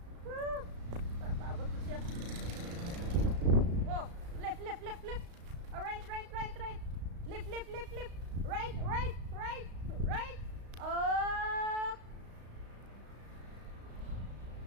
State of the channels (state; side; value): late; left; 35 ms